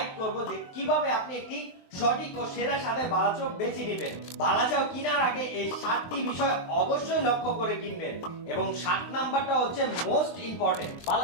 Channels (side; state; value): right; late; 23 ms